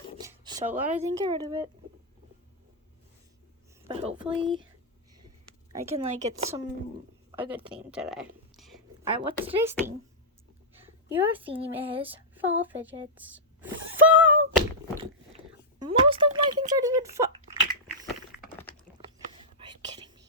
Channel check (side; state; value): both; normal; correlation -0.10